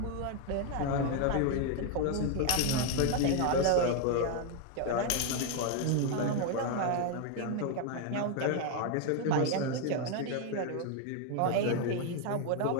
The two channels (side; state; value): both; different; correlation 0.01